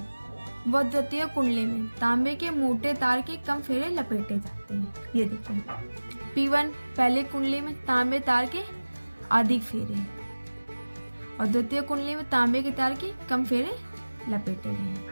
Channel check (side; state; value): both; inverted; correlation -1.00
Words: व द्वितीय कुंडली में तांबे के मोटे तार के कम फेरे लपेटे जाते हैं। ये देखो, P1 पहले कुंडली में तांबे तार के अधिक फेरे और द्वितीय कुंडली में तांबे के तार के कम फेरे लपेटे गए हैं।